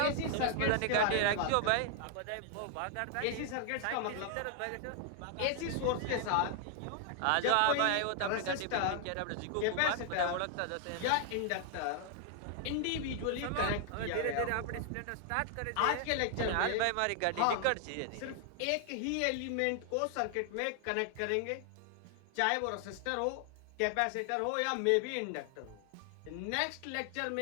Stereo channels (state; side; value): different; both; correlation 0.00